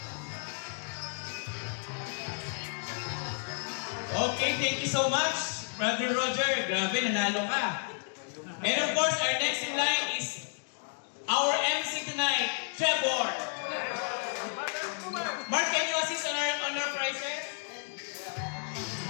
Okay, thank you so much, Brother Roger. Grabe, nanalo ka. And of course, our next in line is our MC tonight, Trevor. Mark, can you assist on our prizes?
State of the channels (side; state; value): right; silent; 57 dB below the other